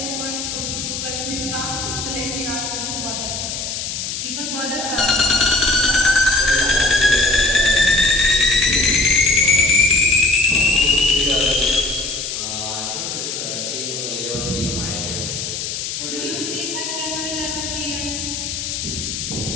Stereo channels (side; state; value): left; noise; hiss, 5 dB below the sound